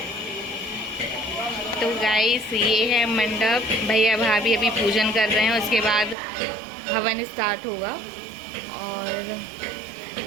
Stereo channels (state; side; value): drops out; left; at 6.2 s